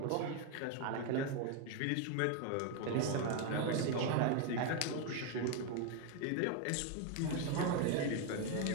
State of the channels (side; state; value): both; different; correlation 0.01